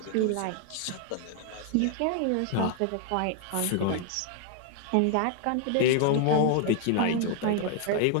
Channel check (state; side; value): different; both; correlation 0.00